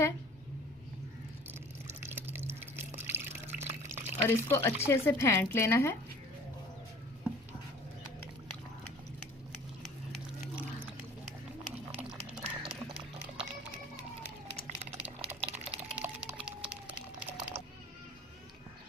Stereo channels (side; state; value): both; normal; correlation 0.47